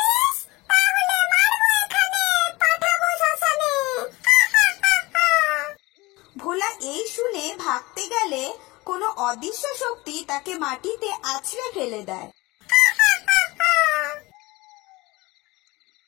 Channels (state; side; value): quieter; right; 21.9 dB